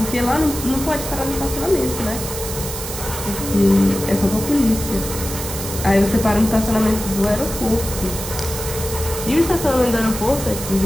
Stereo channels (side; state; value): right; noise; hiss, 8 dB below the sound